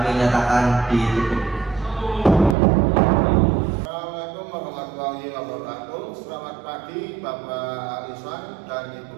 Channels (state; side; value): drops out; left; at 2.6 s